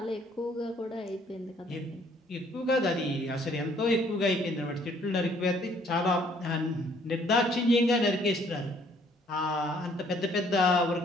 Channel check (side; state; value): both; normal; correlation 0.62